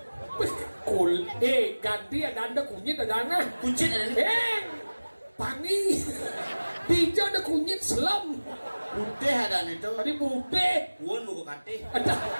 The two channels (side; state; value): both; inverted; correlation -1.00